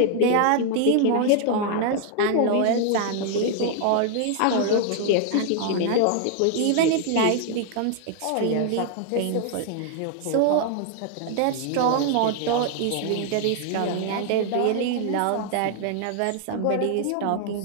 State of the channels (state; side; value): different; both; correlation 0.00